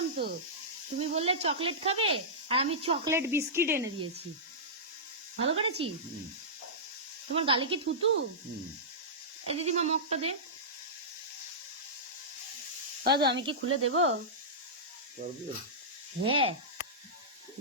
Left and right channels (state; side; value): normal; both; correlation -0.15